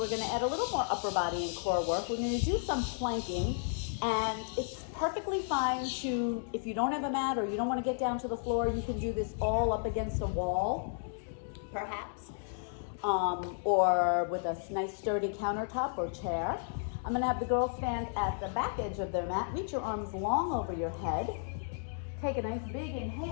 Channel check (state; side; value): silent; right; digital silence